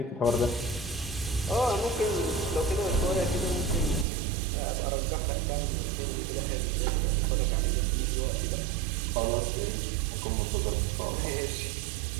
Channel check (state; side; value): drops out; left; at 4.0 s